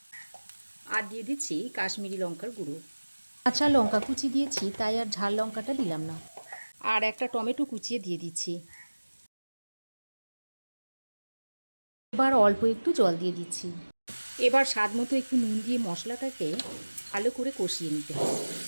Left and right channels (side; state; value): both; inverted; correlation -1.00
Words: আর দিয়ে দিচ্ছি কাশ্মীরি লঙ্কার গুঁড়ো। কাঁচা লঙ্কা কুচি দিয়েছি তাই আর ঝাল লঙ্কাটা দিলাম না। আর একটা টমেটো কুচিয়ে দিয়ে দিচ্ছি। এবার অল্প একটু জল দিয়ে দিচ্ছি। এবার স্বাদ মতো একটু নুন দিয়ে মশলাটাকে ভালো করে কষিয়ে নিতে হবে।